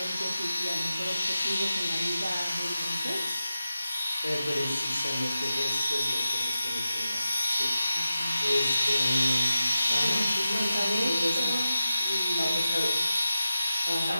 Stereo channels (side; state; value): both; inverted; correlation -0.91